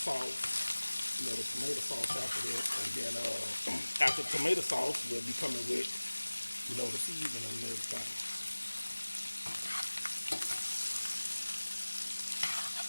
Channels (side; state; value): both; inverted; correlation -1.00